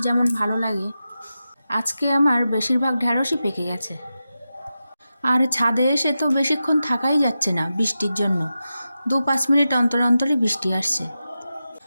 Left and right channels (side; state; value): both; inverted; correlation -0.91